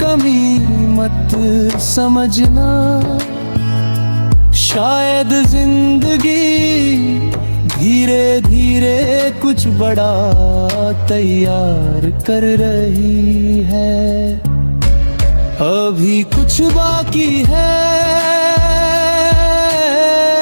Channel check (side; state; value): both; inverted; correlation -1.00